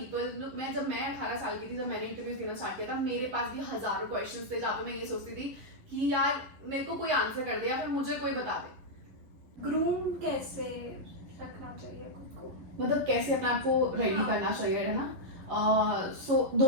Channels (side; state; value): left; late; 11 ms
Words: जब मैं 18 साल की थी, जब मैंने इंटरव्यू देना स्टार्ट किया था, मेरे पास भी हजारों क्वेश्चंस थे जहाँ पे मैं ये सोचती थी कि यार मेरे को कोई आंसर कर दे या फिर मुझे कोई बता दे। ग्रूम कैसे रखना चाहिए खुद को, मतलब कैसे अपने आप को रेडी करना चाहिए, है ना। सो